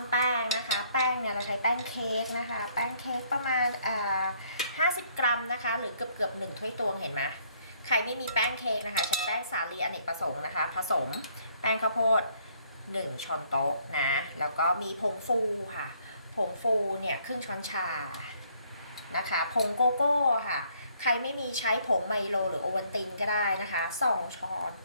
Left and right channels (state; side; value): inverted; both; correlation -0.65